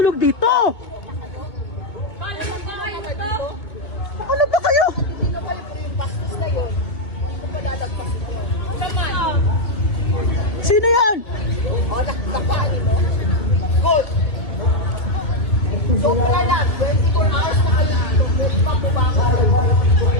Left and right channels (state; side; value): late; right; 1.9 ms